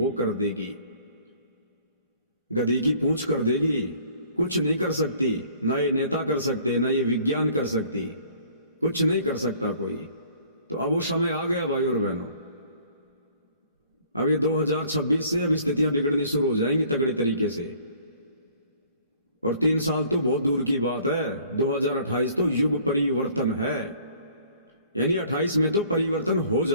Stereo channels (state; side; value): inverted; both; correlation -0.55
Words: कर देगी, गधी की पूंछ कर देगी, कुछ नहीं कर सकती। ना ये नेता कर सकते, ना ये विज्ञान कर सकती, कुछ नहीं कर सकता कोई। तो अब वो समय आ गया भाई और बहनों। अब ये 2026 से अब स्थितियां बिगड़नी शुरू हो जाएंगी तगड़े तरीके से। और 3 साल तो बहुत दूर की बात है, 2028 तो युग परिवर्तन है, यानी 28 में तो परिवर्तन हो